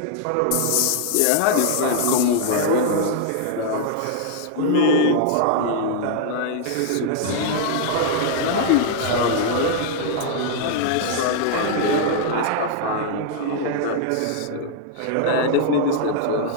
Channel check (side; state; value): both; different; correlation -0.01